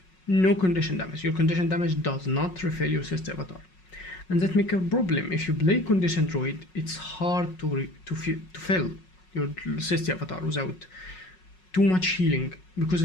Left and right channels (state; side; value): late; right; 5.4 ms